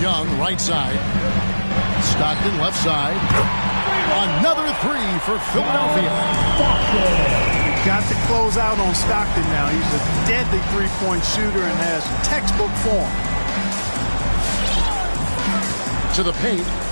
Young, right side. Stockton, left side. Another 3 for Philadelphia. Got to close out on Stockton now. He's a deadly three-point shooter and has textbook form. To the paint.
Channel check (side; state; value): both; inverted; correlation -1.00